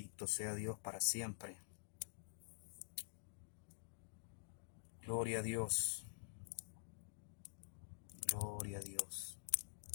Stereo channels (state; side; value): silent; right; digital silence